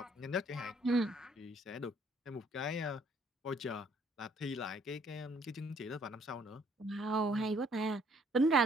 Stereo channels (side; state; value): both; normal; correlation 0.64